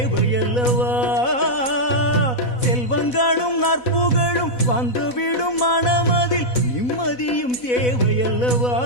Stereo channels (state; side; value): late; right; 4.0 ms